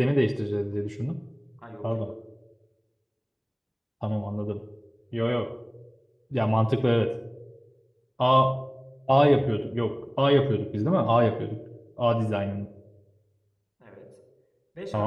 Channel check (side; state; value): both; identical; correlation 1.00